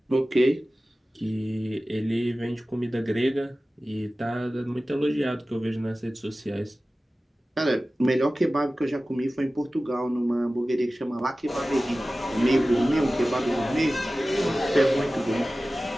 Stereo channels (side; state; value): both; normal; correlation 0.96